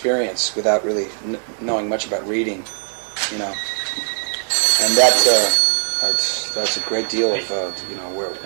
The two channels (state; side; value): silent; left; digital silence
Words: without really knowing much about reading, and that's a great deal of